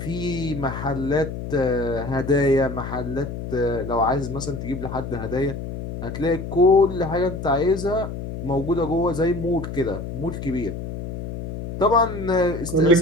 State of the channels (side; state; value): left; noise; hum, 7 dB below the sound